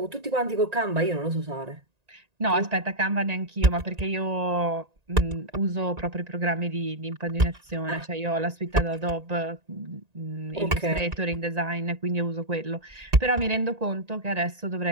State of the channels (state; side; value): late; left; 1.9 ms